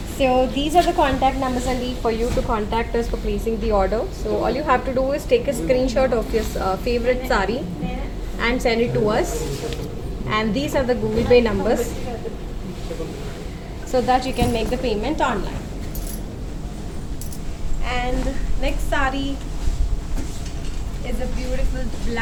So these are the contact numbers only for you to contact us for placing the order. So all you have to do is take a screenshot of your favorite sari and send it to us. And these are the Google Pay numbers so that you can make the payment online. And next sari is a beautiful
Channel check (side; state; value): both; identical; correlation 1.00